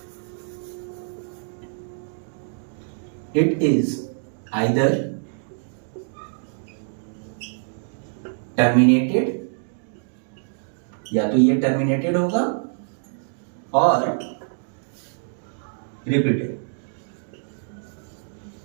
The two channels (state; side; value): silent; left; 62 dB below the other